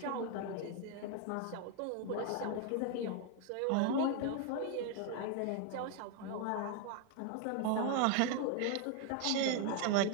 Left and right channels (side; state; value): both; different; correlation 0.01